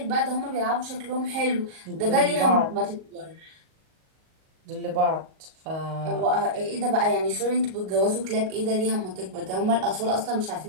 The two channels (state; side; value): late; left; 38 ms